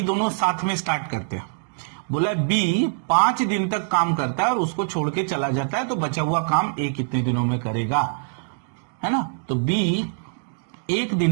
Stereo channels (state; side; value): silent; left; digital silence